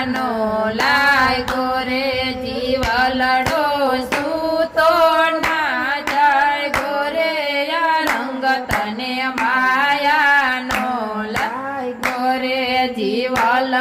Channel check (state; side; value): identical; both; correlation 1.00